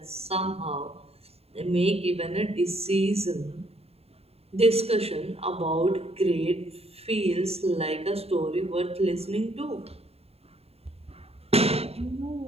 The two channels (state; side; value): late; left; 0.29 ms